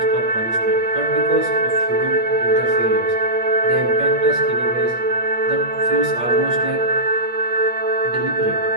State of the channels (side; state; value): left; late; 8.6 ms